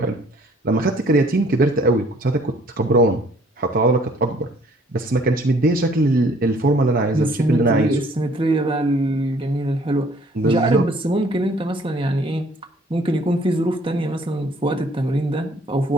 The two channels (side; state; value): both; normal; correlation 0.59